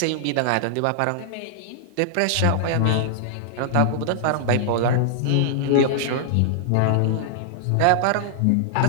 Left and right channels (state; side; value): different; both; correlation -0.01